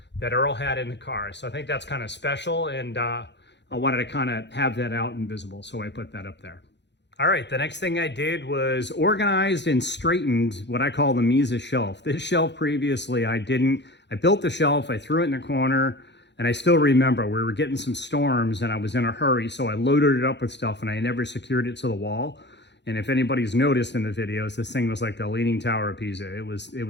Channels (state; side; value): late; right; 0.51 ms